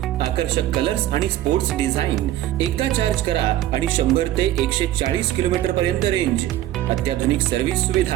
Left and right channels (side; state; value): left; quieter; 13.7 dB